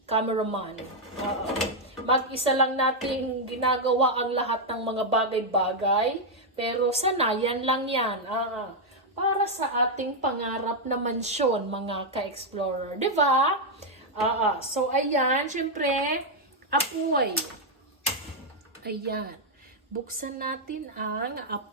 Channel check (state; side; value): normal; both; correlation -0.01